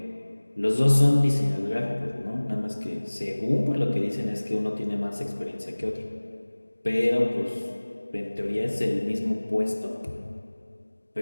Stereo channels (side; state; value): both; inverted; correlation -1.00